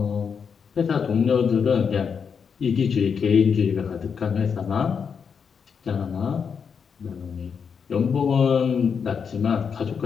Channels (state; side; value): quieter; right; 6.4 dB